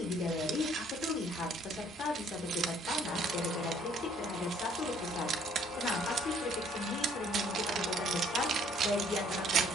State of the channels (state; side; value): normal; both; correlation 0.61